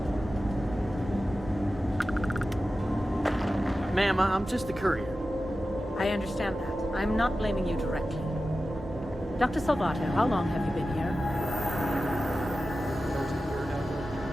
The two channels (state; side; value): normal; both; correlation 0.93